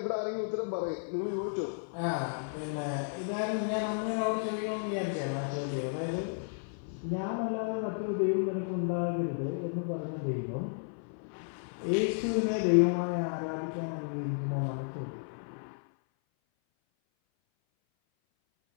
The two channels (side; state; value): right; silent; 56 dB below the other